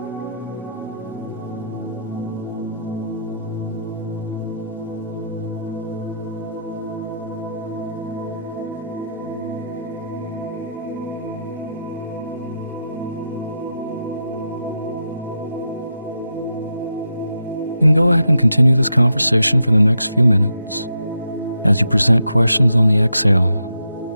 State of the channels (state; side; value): inverted; both; correlation -0.82